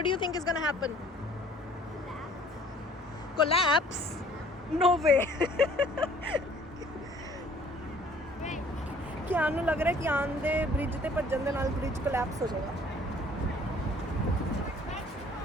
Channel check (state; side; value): normal; both; correlation 0.55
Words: do you think is going to happen? Collapse? No way. कियान ਨੂੰ ਲੱਗ ਰਿਹਾ ਕਿਆਨ ਦੇ ਬ੍ਰਿਜ ਤੇ ਭੱਜਣ ਦੇ ਨਾਲ bridge collapse ਹੋ ਜਾਏਗਾ।